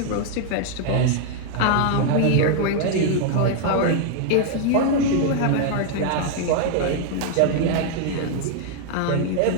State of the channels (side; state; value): both; different; correlation 0.00